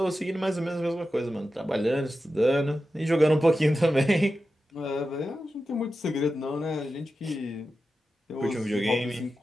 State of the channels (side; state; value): both; normal; correlation 0.92